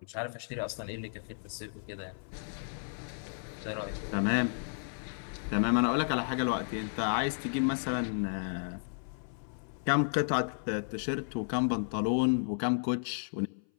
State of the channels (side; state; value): right; silent; 56 dB below the other